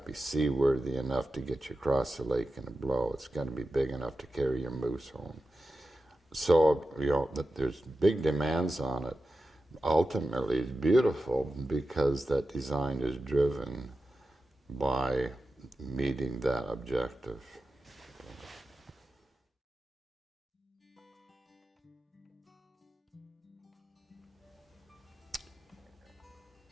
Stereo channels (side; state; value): both; normal; correlation 0.92